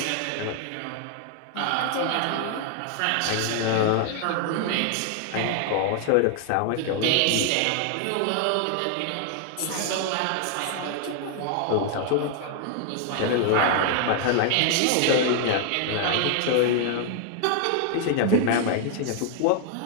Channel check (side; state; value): both; different; correlation 0.00